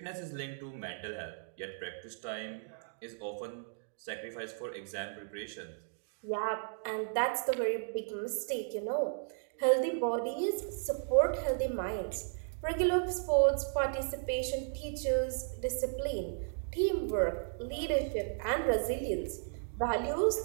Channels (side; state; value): left; silent; digital silence